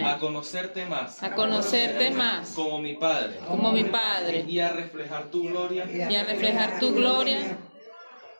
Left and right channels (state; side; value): inverted; both; correlation -1.00